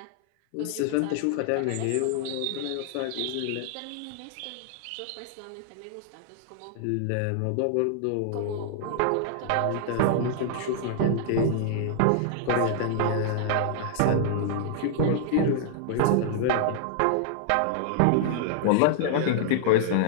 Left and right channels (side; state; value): both; different; correlation -0.01